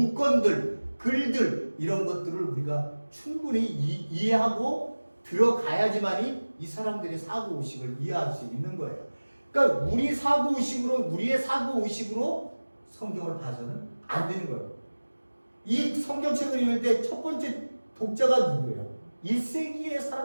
글들 이런 것들을 우리가 충분히 이해하고 들어가야지만이 이 사람들의 사고의식을 이해할 수 있는 거예요. 그러니까 우리의 사고의식으로 성경을 봐서는 안 되는 거예요. 이 성경책을 읽을 때 첫 번째 독자가 누구예요? 1세기의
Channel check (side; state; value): both; inverted; correlation -1.00